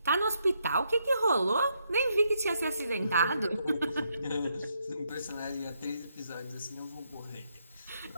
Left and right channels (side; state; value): both; inverted; correlation -0.77